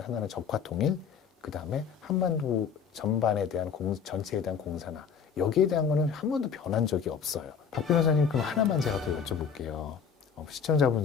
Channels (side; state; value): right; quieter; 6.7 dB